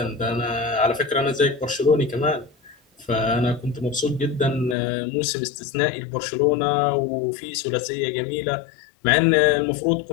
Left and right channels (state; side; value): drops out; right; at 4.8 s